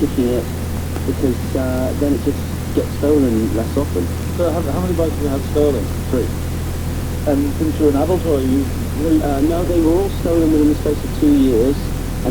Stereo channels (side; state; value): both; identical; correlation 1.00